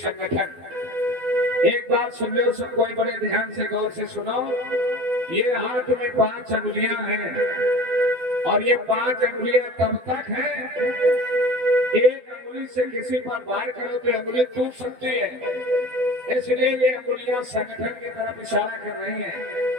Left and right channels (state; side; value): late; left; 12 ms